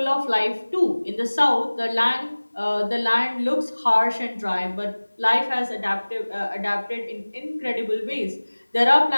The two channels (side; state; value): both; inverted; correlation -1.00